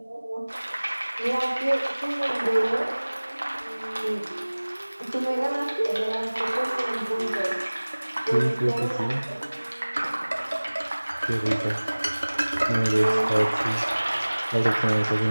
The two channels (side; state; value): both; inverted; correlation -1.00